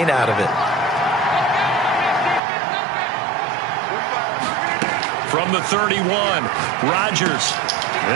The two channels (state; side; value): drops out; left; at 2.4 s